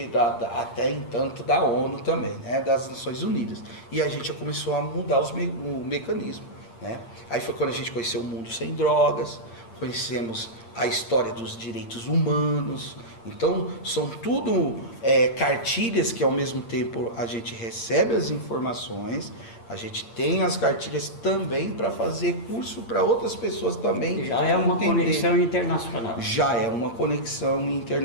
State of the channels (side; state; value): right; late; 8.7 ms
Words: até entanto da ONU também, né, das Nações Unidas. E a gente já começou a mudar o mecanismo, né? Aí foi quando a gente conheceu o mundo sem drogas, conhecemos a história dos direitos humanos. Então, são tudo cartilhas que ao mesmo tempo a gente recebe as informações, a gente tem as cartilhas também para fazer curso para outras pessoas também. Já é uma conexão internacional. Já é uma conexão